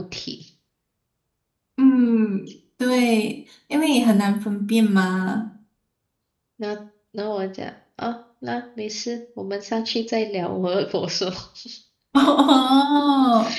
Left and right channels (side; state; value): both; identical; correlation 1.00